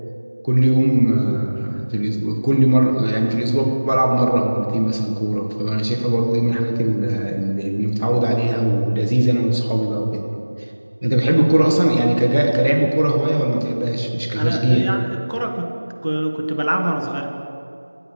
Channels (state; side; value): inverted; both; correlation -1.00